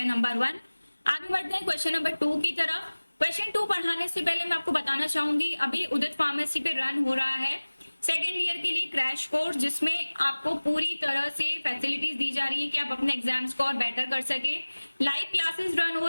नंबर 1। आगे बढ़ते हैं क्वेश्चन नंबर 2 की तरफ। क्वेश्चन 2 पढ़ाने से पहले मैं आपको बताना चाहूंगी अभी उदित फार्मेसी पे रन हो रहा है सेकेंड ईयर के लिए क्रैश कोर्स, जिसमें आपको पूरी तरह से फैसिलिटीज दी जा रही है कि आप अपने एग्जाम्स को और बेटर कर सके। लाइव क्लासेस रन हो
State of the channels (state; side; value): inverted; both; correlation -1.00